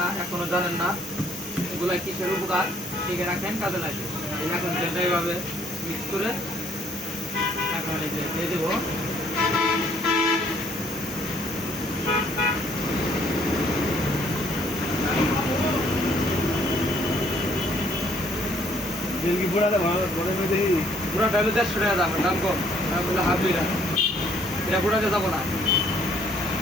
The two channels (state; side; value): normal; both; correlation 0.64